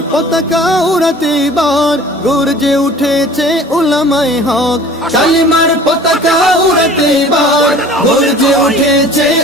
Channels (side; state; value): both; normal; correlation 0.46